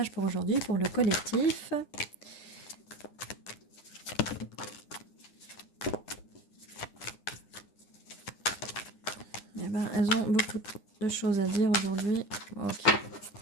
pour aujourd'hui pour le collectif? Eh ben, elles ont beaucoup de choses à dire aujourd'hui. Ok.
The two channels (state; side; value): late; right; 9.9 ms